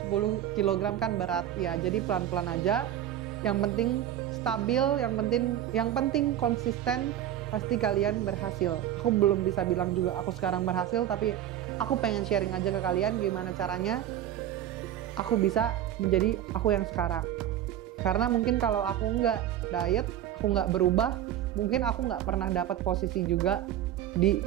kg kan berat ya. Jadi pelan-pelan aja. Yang penting stabil, yang penting konsisten, pasti kalian berhasil. Aku belum bisa bilang juga aku sekarang berhasil, tapi aku pengen sharing aja ke kalian gimana caranya aku bisa menjadi aku yang sekarang. Karena mungkin kalau aku nggak diet, aku nggak berubah, mungkin aku nggak pernah dapat posisi juga di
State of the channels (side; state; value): left; quieter; 11.5 dB